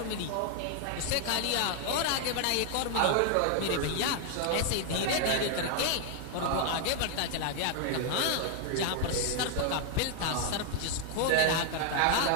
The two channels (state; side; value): different; both; correlation 0.00